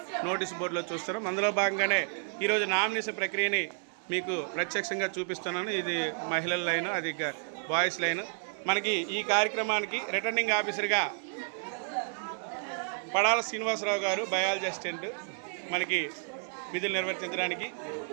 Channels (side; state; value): left; silent; 57 dB below the other